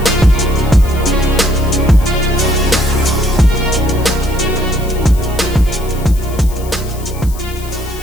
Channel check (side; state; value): left; noise; hiss, 17 dB below the sound